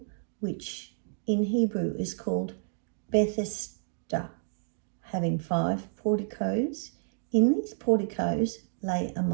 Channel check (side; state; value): left; silent; digital silence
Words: which in Hebrew is called Bethesda, having 5 porticos. In these porticos lay a